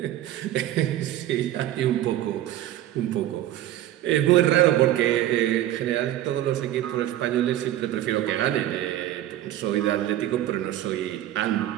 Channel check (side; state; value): left; quieter; 13.2 dB